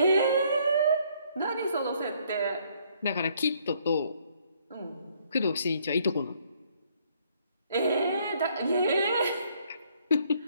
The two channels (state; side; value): inverted; both; correlation -0.66